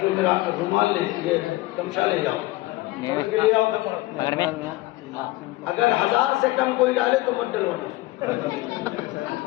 میرا رومال لے یہ تمشا لے جاؤ پکڑ کے لے آؤ پکڑ میں اگر 1000 سے کم کوئی ڈالے تو مت ڈلوانا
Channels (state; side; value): quieter; right; 19.2 dB